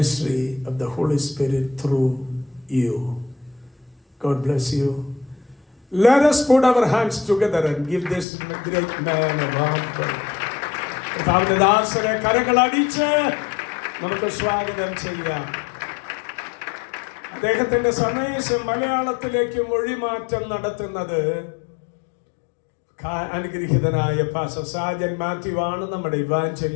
of the Holy Spirit through you. God bless you. Let us put our hands together and give this great man a warm welcome. കർത്താവിന്റെ ദാസനെ കരങ്ങളടിച്ച് നമുക്ക് സ്വാഗതം ചെയ്യാം. അദ്ദേഹത്തിന്റെ സന്ദേശം മലയാളത്തിലേക്ക് മൊഴിമാറ്റം നടത്തുന്നത് അനുഗ്രഹീതനായ പാസ്റ്റർ സാജൻ മാത്യു ആണ്, നമ്മുടെ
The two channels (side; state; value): right; drops out; at 8.2 s